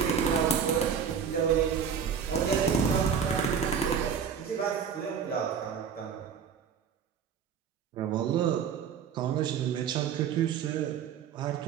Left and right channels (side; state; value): left; quieter; 7.2 dB